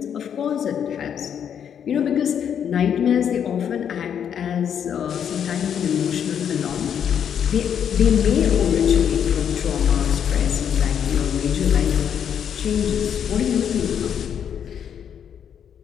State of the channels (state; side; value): quieter; right; 8.5 dB